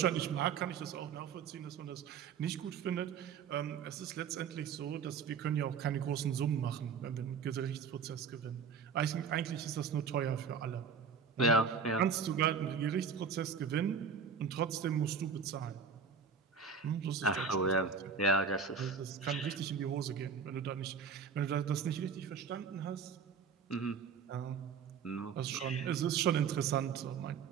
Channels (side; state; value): left; quieter; 6.1 dB